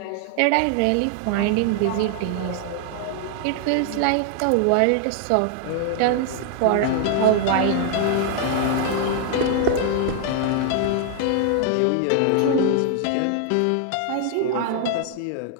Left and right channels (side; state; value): both; different; correlation 0.00